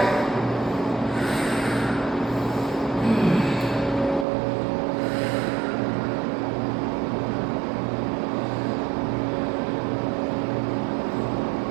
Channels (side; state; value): left; drops out; at 4.2 s